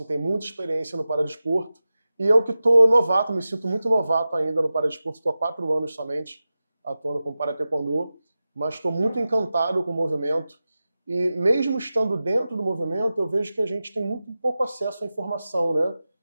tem muita experiência no paradesporto. E eu que estou novato, me sinto muito novato ainda no paradesporto, estou há 4 anos somente atuando com Parataekwondo, mas estou muito encantado com o movimento. E mesmo estando dentro do movimento, eu vejo que a gente tem muito pouco acesso à informação, né?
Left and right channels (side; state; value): both; inverted; correlation -0.94